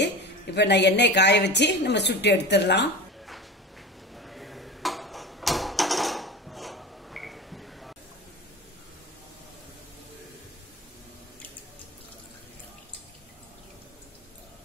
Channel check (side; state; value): both; normal; correlation 0.30